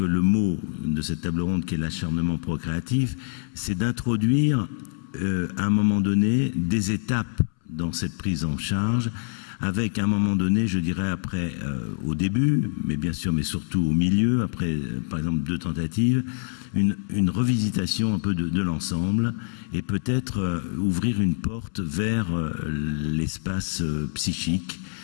mot de cette table ronde, qui est l'acharnement procréatif, c'est d'introduire à un moment donné des étapes dans cette prise en charge, avec à un moment donné, je dirais après, au début, mais bien sûr, mais surtout au milieu, après par exemple 2 tentatives, une revisitation un peu de l'ensemble, et peut-être ouvrir une porte vers l'espace psychique,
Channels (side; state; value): right; silent; 62 dB below the other